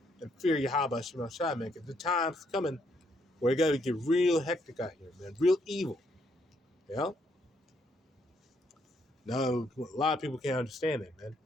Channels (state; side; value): normal; both; correlation 0.73